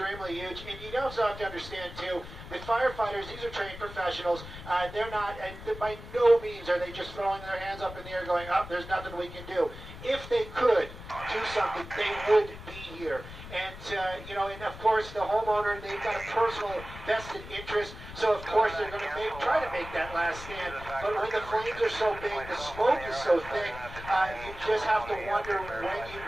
huge, and you also have to understand too that firefighters, these are trained professionals. They're not, by no means are they just throwing their hands up in the air going, "Oh, there's nothing we can do." If they could do something, they would be here. And and of course the homeowner, they've got a personal vested interest, so of course they're going to try to make that last stand. But when the flames are so big, the smoke is so thick, you just have to wonder when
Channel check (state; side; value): noise; left; rumble, 13 dB below the sound